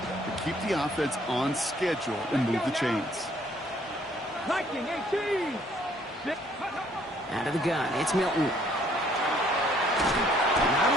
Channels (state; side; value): normal; both; correlation 0.63